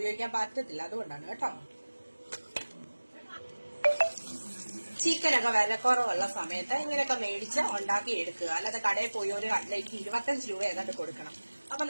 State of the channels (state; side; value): inverted; both; correlation -1.00